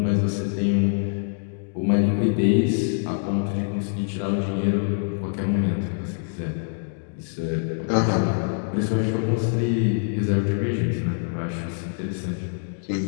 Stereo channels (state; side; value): silent; right; 62 dB below the other